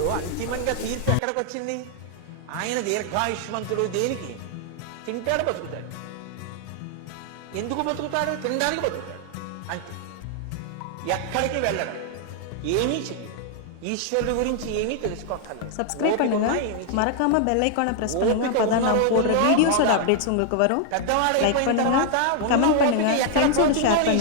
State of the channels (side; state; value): both; different; correlation 0.00